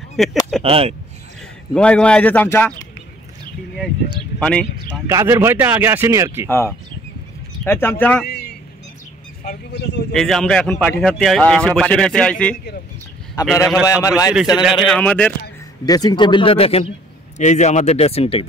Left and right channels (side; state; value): both; normal; correlation 0.58